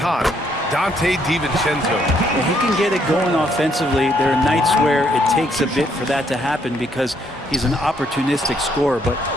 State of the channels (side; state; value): both; normal; correlation 0.71